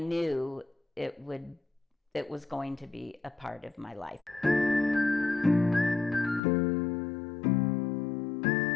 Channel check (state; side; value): drops out; right; at 6.4 s